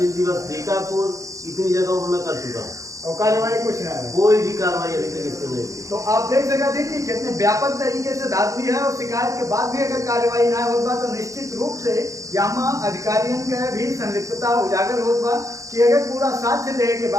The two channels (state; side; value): late; left; 0.16 ms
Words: दिवस बीकापुर, इतनी जगहों पर मैं कर चुका हूँ और कार्रवाई कुछ ना है। कोई भी कार्रवाई अभी तक इसको नहीं हुई। तो आप देख सकते हैं कि कितने व्यापक तरीके से धांधली है और शिकायत के बाद भी अगर कार्रवाई ना होता तो निश्चित रूप से यहाँ अधिकारियों के भी संलिप्तता उजागर होता कि अगर पूरा साक्ष्य देने के